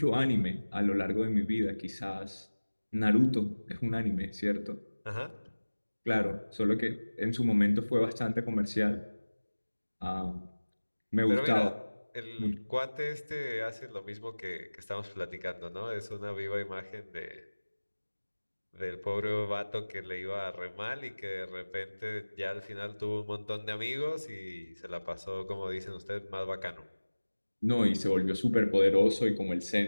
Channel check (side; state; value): both; inverted; correlation -1.00